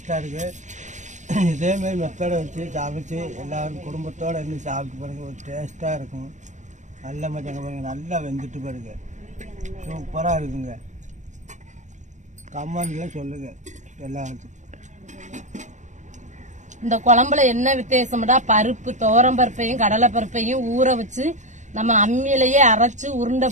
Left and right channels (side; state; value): left; late; 0.35 ms